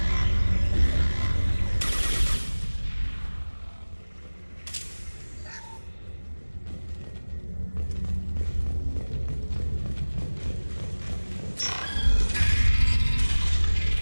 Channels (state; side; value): inverted; both; correlation -1.00